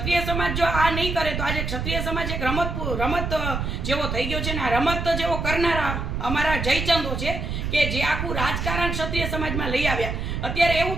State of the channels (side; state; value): right; noise; rumble, 3 dB below the sound